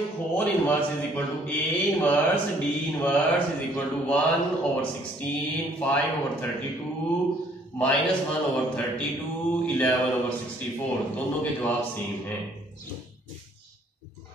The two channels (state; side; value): normal; both; correlation 0.62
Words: whole inverse is equal to A inverse D inverse is equal to 1/16 5/32 minus 1/32 11/64 दोनों के जवाब सेम हैं।